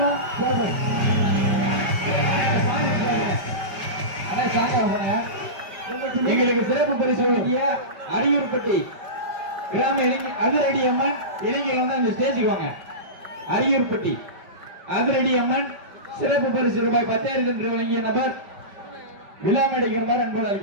எங்களுக்கு சிறப்பு பரிசு வழங்கிய அரியூர்பட்டி கிராம அதிரடி அம்மன் இளைஞர்கள் வந்து அந்த ஸ்டேஜுக்கு வாங்க. அரியூர்பட்டி அதிரடி அம்மன் சிறப்பு பரிசு ரூபாய் 10,000 என்று வழங்கிய நபர் விழா மேடைக்கிறவர் அன்போடு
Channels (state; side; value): late; left; 5.1 ms